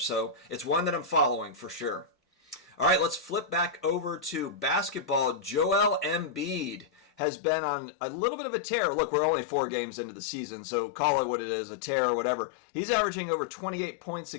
it's one that I'm following for sure. All right, let's flip back over to basketball. Joel Embiid has been on a little bit of a tear. Look, we're only 4 games into the season, so call it what it is, a tear or whatever. He's averaging over 28 points a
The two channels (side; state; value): right; drops out; at 7.1 s